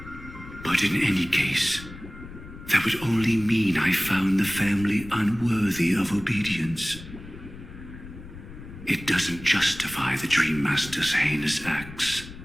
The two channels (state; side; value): noise; left; rumble, 15 dB below the sound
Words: But in any case, that would only mean I found the family unworthy of obedience. It doesn't justify the Dream Master's heinous acts.